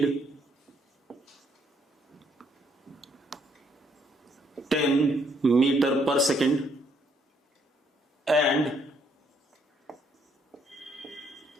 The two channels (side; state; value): both; normal; correlation 0.70